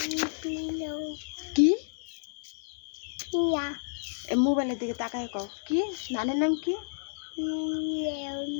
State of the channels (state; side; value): silent; right; 57 dB below the other